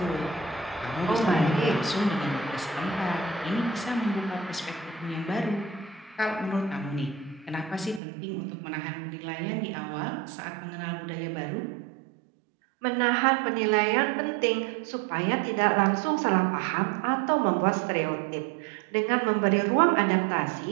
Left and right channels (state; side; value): drops out; left; at 8.0 s